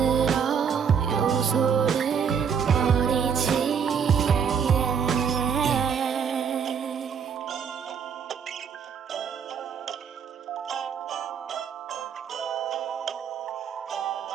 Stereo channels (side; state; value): left; quieter; 7.1 dB